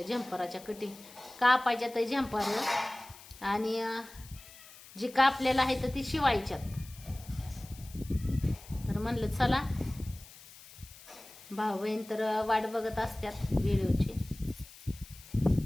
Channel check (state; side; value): noise; left; hiss, 20 dB below the sound